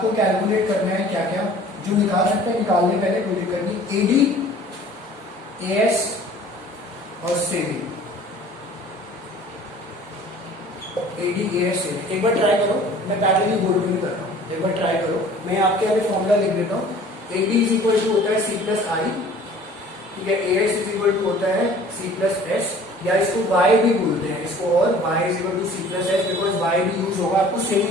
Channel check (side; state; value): both; normal; correlation 0.49